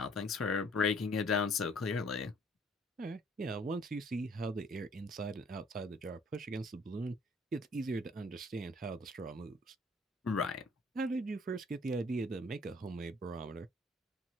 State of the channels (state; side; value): normal; both; correlation 0.58